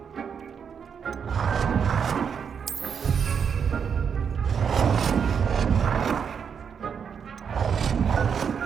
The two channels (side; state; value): left; quieter; 7.0 dB